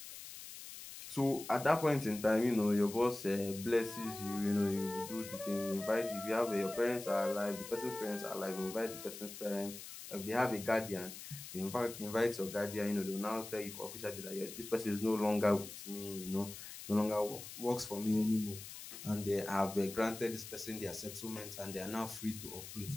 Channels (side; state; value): left; noise; hiss, 12 dB below the sound